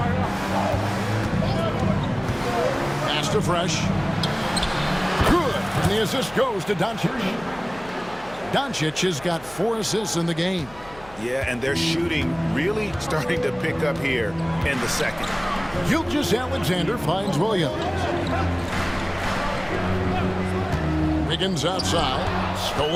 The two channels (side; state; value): left; noise; hum, 21 dB below the sound